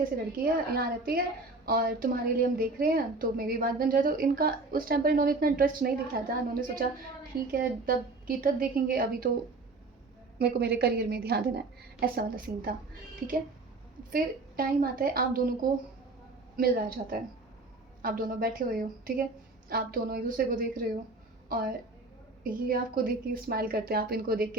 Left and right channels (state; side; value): quieter; left; 3.3 dB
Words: लड़की है, यहाँ रहती है और तुम्हारे लिए हम देख रहे हैं, तो मेरी बात बन जाए। तो इनका उस टाइम पर इन्होंने इतना इंटरेस्ट नहीं दिखाया था, इन्होंने सोचा ठीक है तब की तब देखेंगे, अभी तो मेरे को मेरे करियर में ध्यान देना है, ऐसा वाला सीन था, ठीक है। फिर टाइम आता है, आप दोनों को मिल जाता है, आप दोनों बैठे हुए हो, ठीक है। आप दोनों एक दूसरे को देख रहे हो, और ये आपको देख के स्माइल करते हैं, आप इनको देख